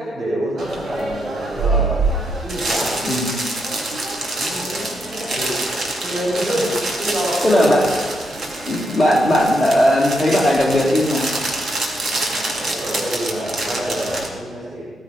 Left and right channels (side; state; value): both; normal; correlation 0.80